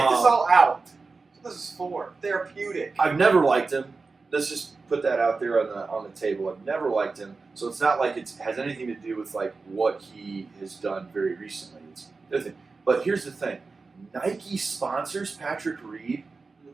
all out. That's what this is for. Therapeutic. I've never liked him. Let's just put that out there on the table. I've never liked him. So it's not like it has anything to do with like what he has done very recently. It's the other thing. But here's the thing. Nike sponsors Patrick Reed.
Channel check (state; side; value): quieter; left; 4.2 dB